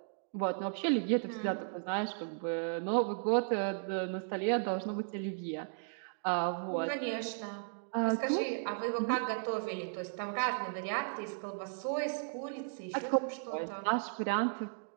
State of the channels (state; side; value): silent; left; digital silence